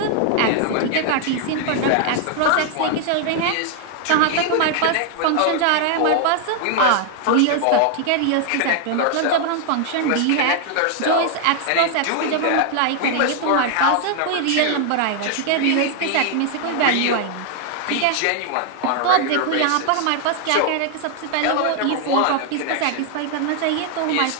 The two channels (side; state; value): both; different; correlation 0.00